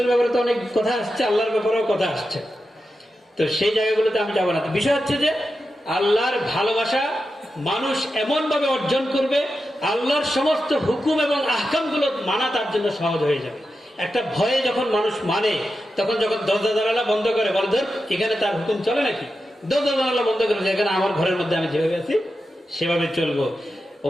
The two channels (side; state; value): both; normal; correlation 0.90